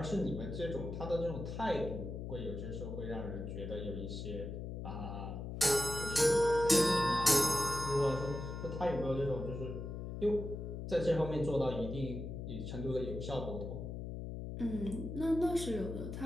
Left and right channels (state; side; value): noise; left; hum, 6 dB below the sound